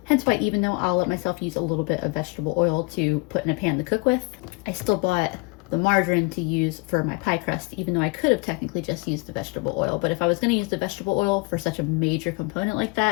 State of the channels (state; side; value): quieter; right; 27.4 dB